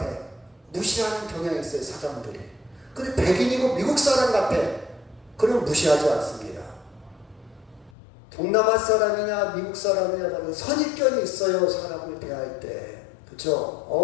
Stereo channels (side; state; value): right; drops out; at 8.0 s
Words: 무시하는 경향이 있어요 사람들이. 근데 백인이고 미국 사람 같아. 그러면 무시하지 않습니다. 동남아 사람이냐 미국 사람이냐 선입견이 있어요. 사람을 대할 때.